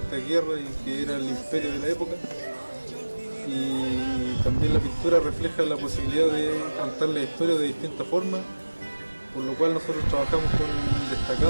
guerras y que era el imperio de la época. Y también la pintura refleja la posibilidad de contar la historia de distintas formas, por lo cual nosotros trabajamos con un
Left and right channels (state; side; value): inverted; both; correlation -1.00